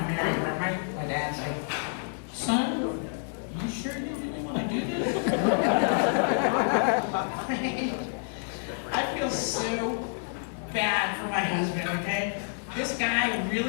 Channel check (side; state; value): right; silent; 57 dB below the other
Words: marry her. My dad's like, son, you sure you really want to do this? I feel so bad for my husband, okay? This guy